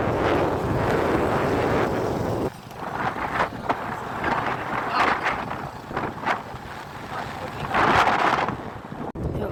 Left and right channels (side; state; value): both; identical; correlation 1.00